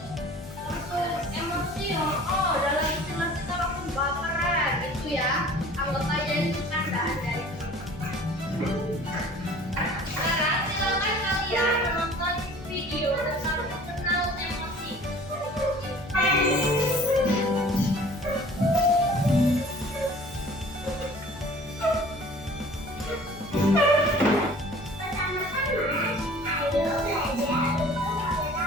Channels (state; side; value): noise; left; hum, 18 dB below the sound